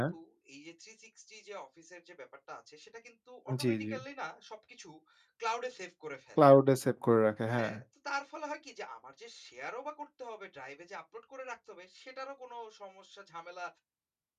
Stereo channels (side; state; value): both; identical; correlation 1.00